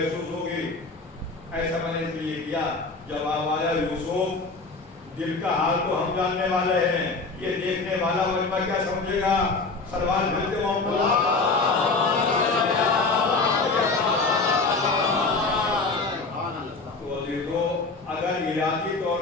ہوگی. ایسا میں نے اس لیے کیا. جب آیا یوسف دل کا حال تو ہم جاننے والے ہیں, یہ دیکھنے والا مجمع کیا سمجھے گا؟ سروال بھلتے محمد تو دیکھو, اگر ارادی طور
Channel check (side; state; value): right; quieter; 3.8 dB